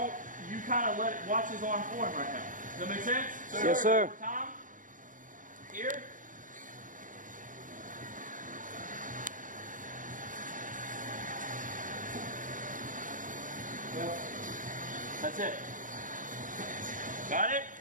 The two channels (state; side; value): late; left; 0.38 ms